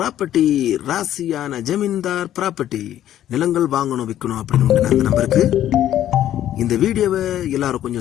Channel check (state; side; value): quieter; right; 11.9 dB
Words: ராசியான ஜமீன்தார் property. நிலங்கள் வாங்கணும் விற்கணும் அப்படின்னு அந்த நம்பருக்கு இந்த வீடியோவை எல்லாரும்